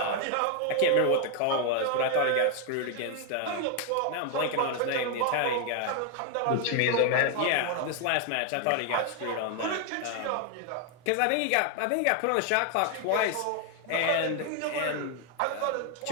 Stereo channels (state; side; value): different; both; correlation 0.00